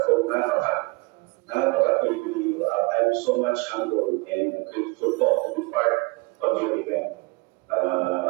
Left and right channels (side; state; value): left; quieter; 27.0 dB